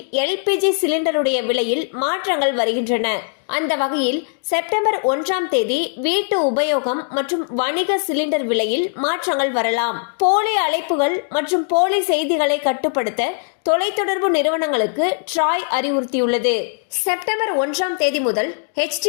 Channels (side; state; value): right; silent; digital silence